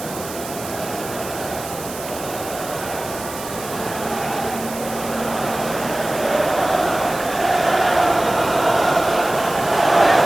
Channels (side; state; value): right; noise; hiss, 12 dB below the sound